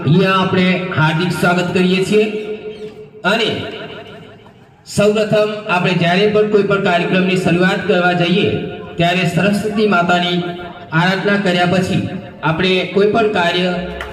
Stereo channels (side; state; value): both; identical; correlation 1.00